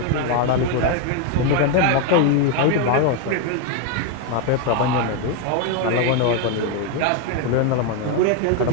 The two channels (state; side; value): different; both; correlation 0.01